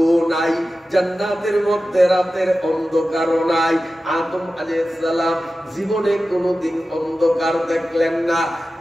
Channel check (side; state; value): both; normal; correlation 0.94